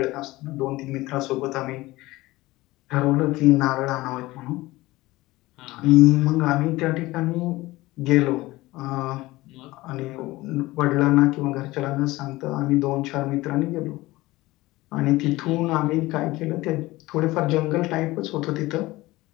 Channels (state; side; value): quieter; right; 19.2 dB